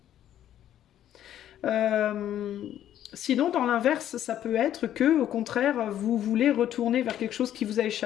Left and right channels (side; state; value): right; quieter; 11.3 dB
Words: Sinon, dans l'inverse, ça peut être que, au contraire, vous voulez retourner vers quelque chose qui vous a